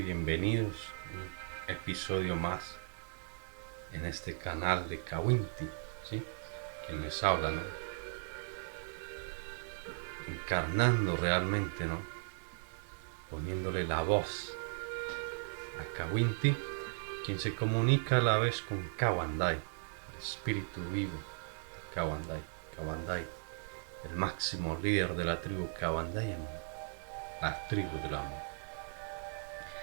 a un episodio más en este canal de Kawinti, ¿sí? Quien les habla, ¿no? Encarnando realmente, ¿no? Poniéndole la voz a Kawinti, quien se comunica a la vez con Kawandai, el espíritu vivo de Kawandai. Kawandai, el máximo líder de la tribu Kawandai, la tribu del amor.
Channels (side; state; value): left; silent; digital silence